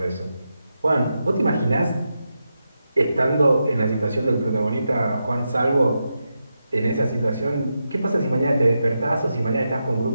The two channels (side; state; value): both; inverted; correlation -0.87